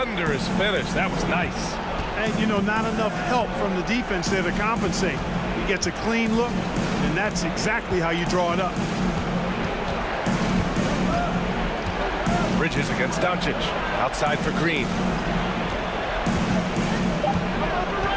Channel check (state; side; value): identical; both; correlation 1.00